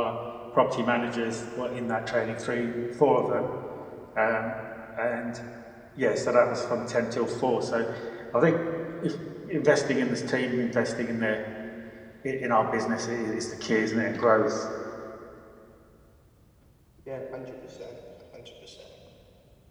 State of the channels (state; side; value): identical; both; correlation 1.00